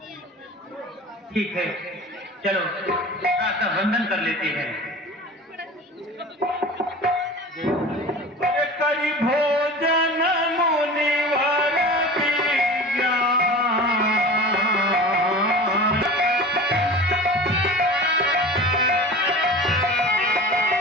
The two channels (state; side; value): normal; both; correlation 0.36